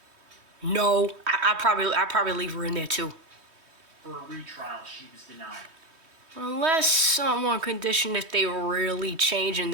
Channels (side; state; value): left; late; 3.2 ms